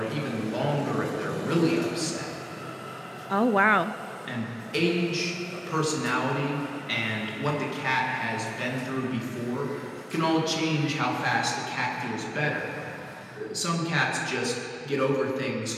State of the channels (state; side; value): identical; both; correlation 1.00